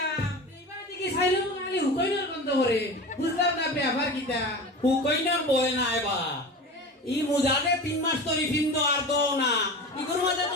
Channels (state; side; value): normal; both; correlation 0.31